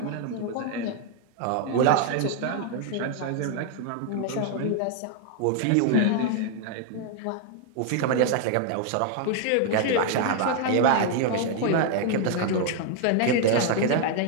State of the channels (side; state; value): both; different; correlation 0.00